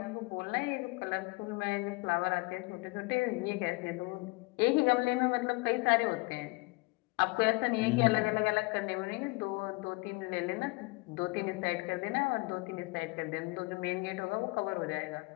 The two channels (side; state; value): right; quieter; 26.1 dB